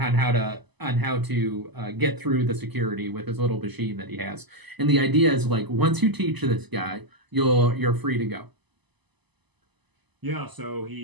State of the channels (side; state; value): left; late; 0.99 ms